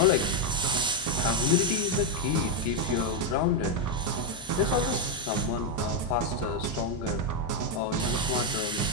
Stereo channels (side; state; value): both; normal; correlation 0.03